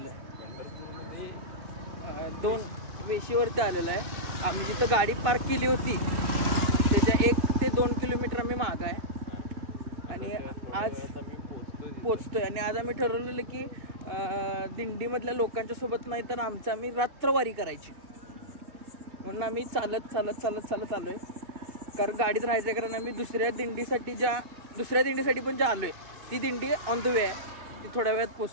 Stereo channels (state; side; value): late; left; 2.6 ms